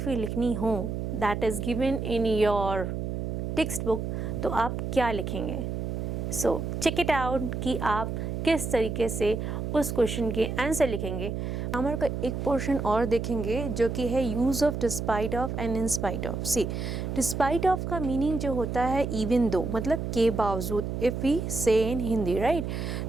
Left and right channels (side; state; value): right; noise; hum, 3 dB below the sound